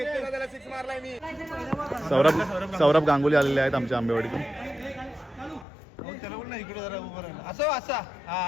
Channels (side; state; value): right; drops out; at 5.7 s